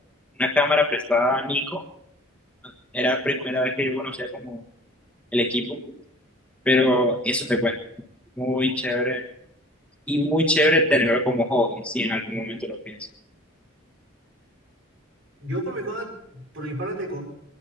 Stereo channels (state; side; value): normal; both; correlation 0.46